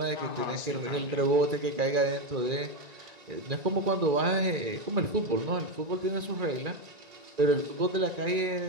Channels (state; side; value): late; left; 1.9 ms